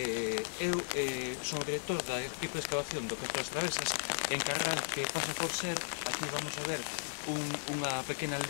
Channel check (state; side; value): silent; right; digital silence